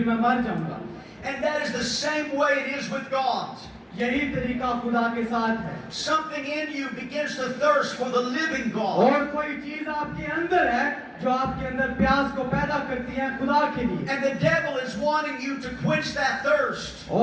मैं मर जाऊंगा। And that is the same way it is with God. यही तरीका खुदा के साथ है। Something in you begins to thirst for the living God. और कोई चीज आपके अंदर है जो आपके अंदर प्यास को पैदा करती है खुदा के लिए, And the devil is wanting you to quench that thirst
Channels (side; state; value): both; identical; correlation 1.00